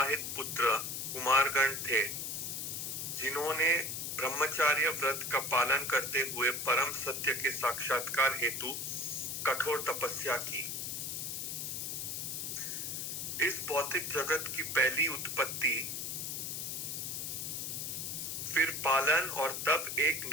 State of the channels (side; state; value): left; noise; hiss, 3 dB below the sound